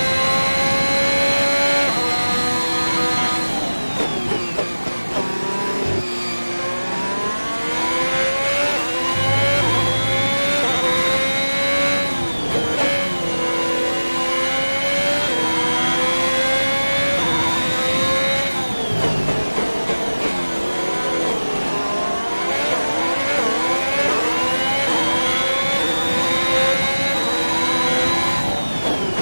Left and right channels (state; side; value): inverted; both; correlation -1.00